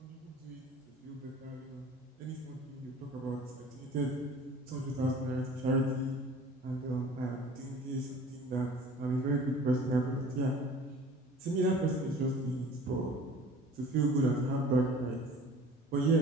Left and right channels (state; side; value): normal; both; correlation 0.45